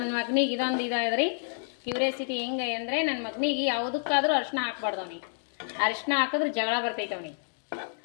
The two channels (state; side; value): silent; right; digital silence